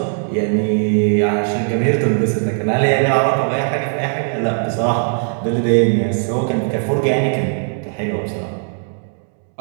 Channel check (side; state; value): left; silent; 60 dB below the other